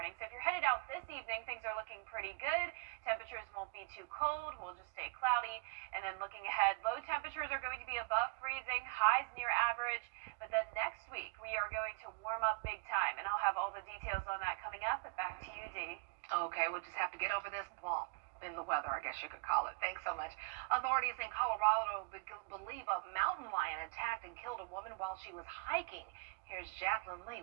So if you're headed out this evening, things are looking pretty good. Temperatures won't be too cold. We'll just stay cloudy. And then looking ahead, low temperatures are going to be above freezing, highs near average. But then next week, we are going to warm up big time. And I'll have all the details on that coming up. But back to you, Dee. Okay, we'll just have to get over this bump in the weather, I guess you could call it. Thanks so much. Authorities in Colorado believe a mountain lion attacked and killed a woman while she was hiking. Here's Jacqueline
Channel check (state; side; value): quieter; left; 32.1 dB